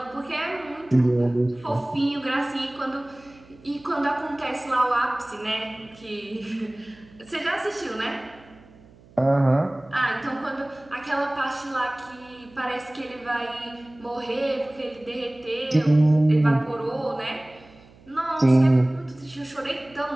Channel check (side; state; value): right; noise; hum, 25 dB below the sound